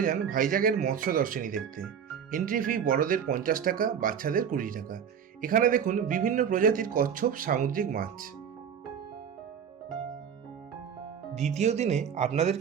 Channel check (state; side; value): quieter; left; 7.8 dB